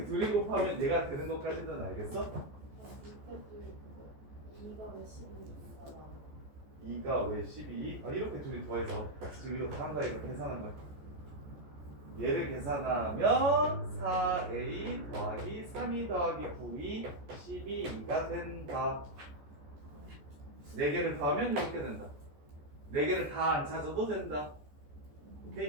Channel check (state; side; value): late; left; 14 ms